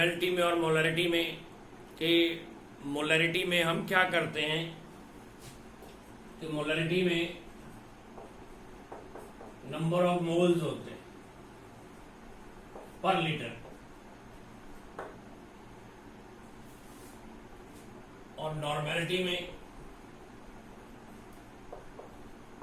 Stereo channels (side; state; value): both; identical; correlation 1.00